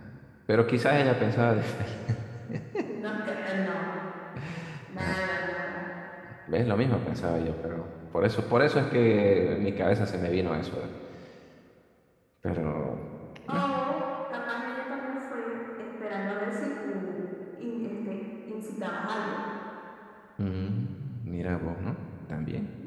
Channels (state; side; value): identical; both; correlation 1.00